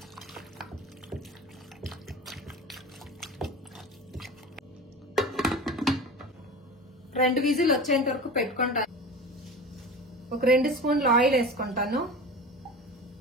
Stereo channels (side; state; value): both; normal; correlation 0.33